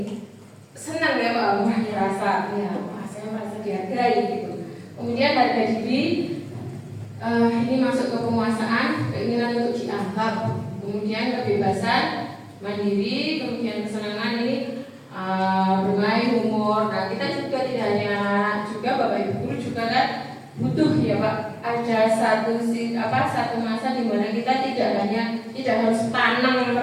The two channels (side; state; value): both; identical; correlation 1.00